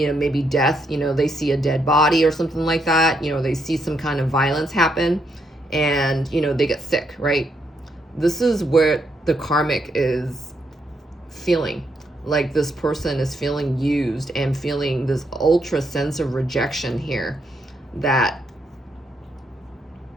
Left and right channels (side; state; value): both; normal; correlation 0.77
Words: maybe death, you know, they see a dead body or something like that, you know, they see some kind of violence happen, and, you know, they get sick, right? This is where the karmic is feeling like this person is feeling used and feeling this ultra sense of rejection here. That